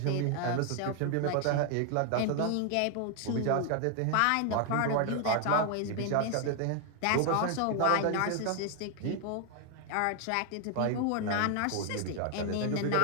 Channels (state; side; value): different; both; correlation 0.00